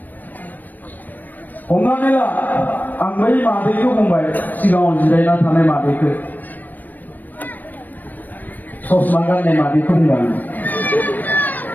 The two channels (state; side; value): late; right; 0.087 ms